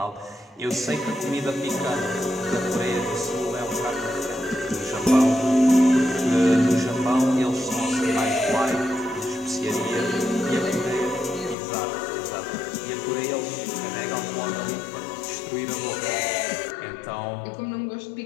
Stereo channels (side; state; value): right; drops out; at 11.6 s